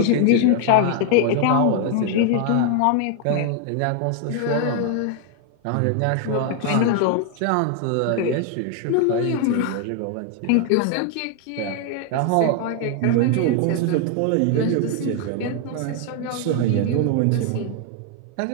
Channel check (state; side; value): different; both; correlation 0.00